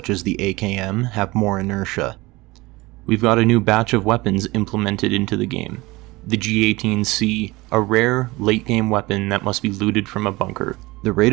as the AKM, have more inertia. We've got a new batch of weapons implemented into the game. The G18C, a rare, late-game weapon that must be looted from a bunker. The rate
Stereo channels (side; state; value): left; quieter; 21.6 dB